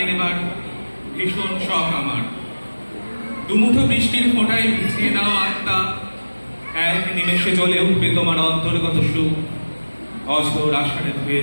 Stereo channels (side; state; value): both; inverted; correlation -1.00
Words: নেবার ভীষণ শখ আমার। দুমুঠো বৃষ্টির ফোঁটায় ভিজিয়ে নাও আত্মা, এক নিমেষে জ্বলে উঠবে তোমার অন্তর্গত সুখ। অঝোর আষাঢ়ে ধুয়ে